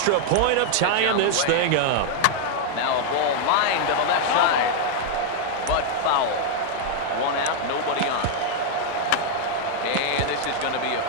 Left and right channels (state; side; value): different; both; correlation -0.01